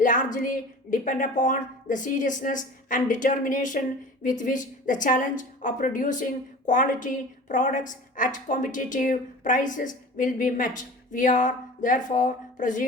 depend upon the seriousness and determination with which the challenge of producing quality products at competitive prices will be met. We are therefore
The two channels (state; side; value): normal; both; correlation 0.39